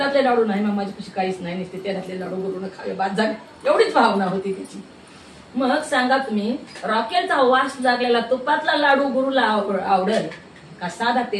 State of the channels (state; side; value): identical; both; correlation 1.00